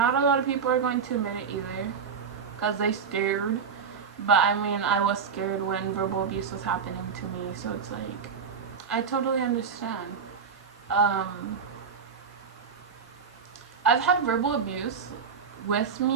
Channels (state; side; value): quieter; left; 6.2 dB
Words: a lot of people are going to admit it either, because they scared. But I mean, I was scared when verbal abuse was happening to me, so it's like, I totally understand. I've had verbal abuse with